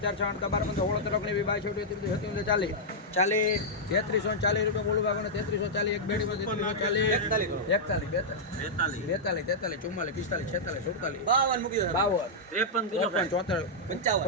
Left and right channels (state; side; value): normal; both; correlation -0.08